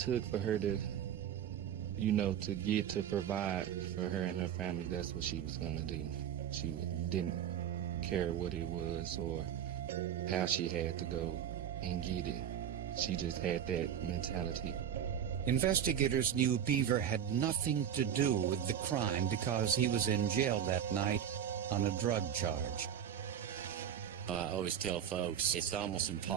for her to, to get to provide for her and her family, that's what she was going to do. She didn't care what it was or how she had to go and get it. She just had that mentality. Investigators knew Beaver had nothing to do with the crime because he was in jail that night on a drug charge. I always tell folks it's almost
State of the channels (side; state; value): left; quieter; 9.3 dB